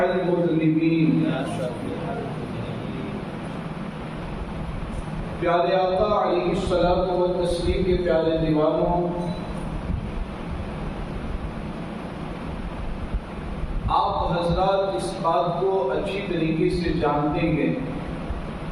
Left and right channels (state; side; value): identical; both; correlation 1.00